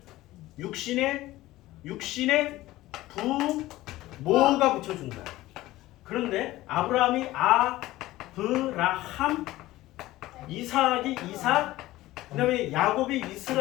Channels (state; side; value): quieter; right; 17.0 dB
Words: 육신의 부모가 붙여준 거야. 그런데 아브라함이 아브라함, 이삭이 이삭, 그 다음에 야곱이